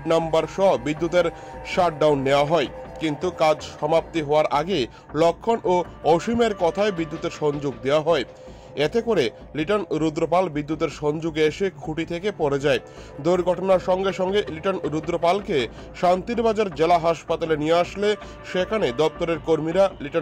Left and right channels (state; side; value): identical; both; correlation 1.00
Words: নাম্বার সহ বিদ্যুতের শাটডাউন নেওয়া হয়, কিন্তু কাজ সমাপ্তি হওয়ার আগে লক্ষণ ও অসীমের কথায় বিদ্যুতের সংযোগ দেওয়া হয়। এতে করে লিটন রুদ্রপাল বিদ্যুতের সংযোগে এসে খুঁটি থেকে পড়ে যায়। দুর্ঘটনার সঙ্গে সঙ্গে লিটন রুদ্রপালকে শান্তিরবাজার জেলা হাসপাতালে নিয়ে আসলে সেখানে দপ্তরের কর্মীরা